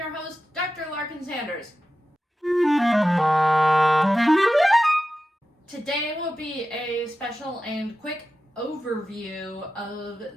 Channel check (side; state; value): both; normal; correlation 0.93